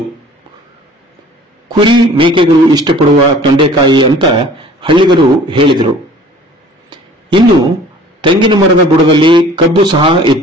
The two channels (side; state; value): both; normal; correlation 0.49